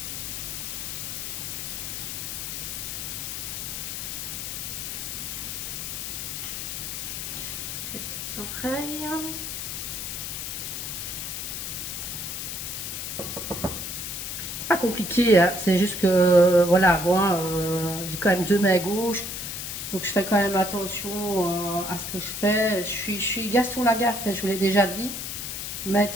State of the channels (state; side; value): noise; left; hiss, 5 dB below the sound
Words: Les petites oreilles. C'est pas compliqué, hein. C'est juste que, voilà, moi, j'ai quand même deux mains gauches. Donc je fais quand même attention à ce que je fais. Je suis Gaston Lagaffe, je vous l'ai déjà dit.